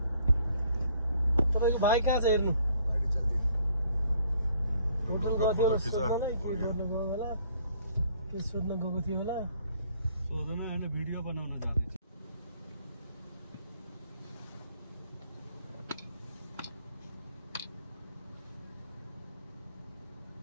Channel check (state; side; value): inverted; both; correlation -0.62